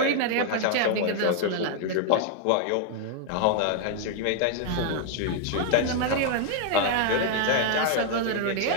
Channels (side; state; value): both; different; correlation 0.00